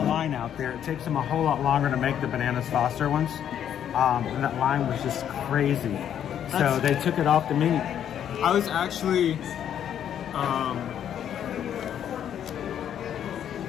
out there. It takes them a whole lot longer to make the Bananas Foster ones. And that line was just crazy. So they took it off the menu. I was actually,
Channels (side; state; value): right; quieter; 9.7 dB